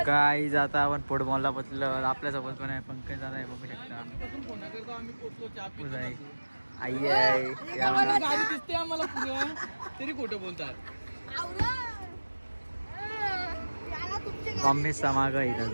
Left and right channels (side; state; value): both; inverted; correlation -1.00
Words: काय आता आपण फुटबॉलला पोचलो. आपल्यासोबत पण आहे पंकज दादा आहे बघू शकता. आई आहे, गाडी दिसते आम्हाला पुढं तरी खोटं बोलतात. मम्मी समाग आहे